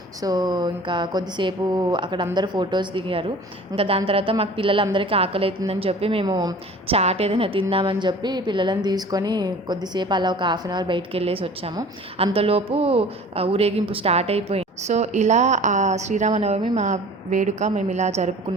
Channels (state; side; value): normal; both; correlation 0.44